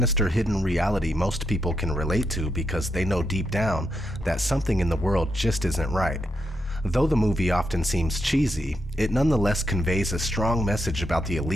hidden reality most people can relate to because they know deep down that something in the world just isn't right. Though the movie often seems cheesy, it nonetheless conveys a strong message about the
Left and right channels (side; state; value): both; normal; correlation 0.82